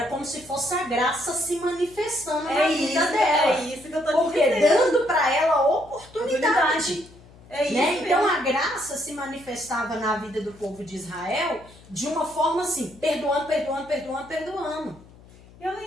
como se fosse a graça se manifestando na vida dela. É isso que eu tô Porque dizendo. dando para ela oportunidade. É isso Né? mesmo. Então a graça se manifestava na vida do povo de Israel de uma forma assim, perdoando, perdoando, perdoando, perdoando. E ela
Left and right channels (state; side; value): noise; left; hum, 23 dB below the sound